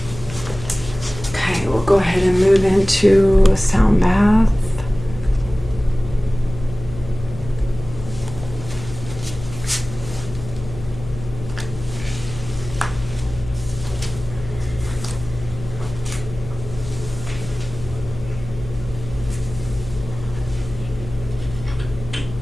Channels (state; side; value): noise; left; hum, 12 dB below the sound